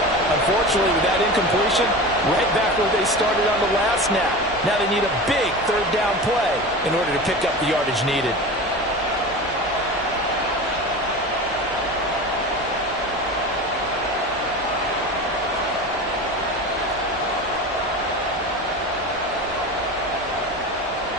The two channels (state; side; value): normal; both; correlation 0.30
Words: Unfortunately, with that incompletion, right back where they started on the last snap. Now they need a big 3rd down play in order to pick up the yardage needed.